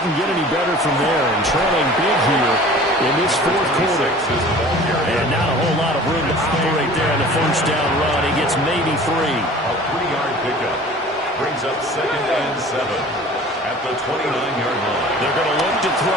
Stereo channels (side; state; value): both; normal; correlation 0.44